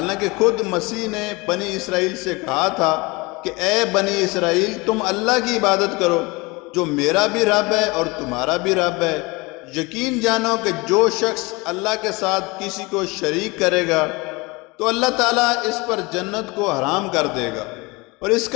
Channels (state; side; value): quieter; right; 25.1 dB